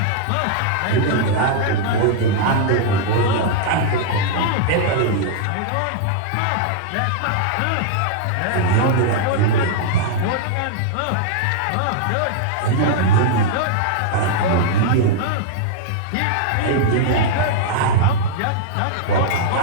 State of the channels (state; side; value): different; both; correlation -0.02